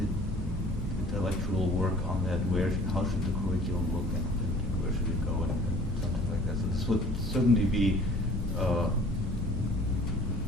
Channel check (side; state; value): both; normal; correlation 0.50